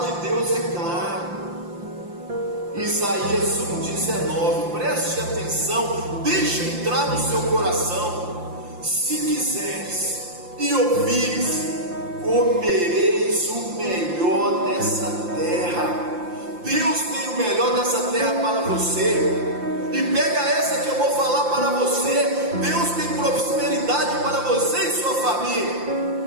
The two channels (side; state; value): left; late; 5.8 ms